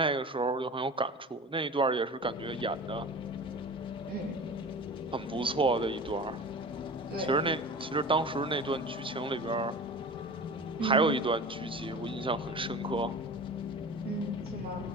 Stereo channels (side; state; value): both; normal; correlation 0.36